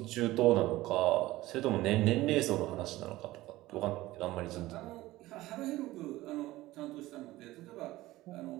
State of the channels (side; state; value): left; quieter; 17.5 dB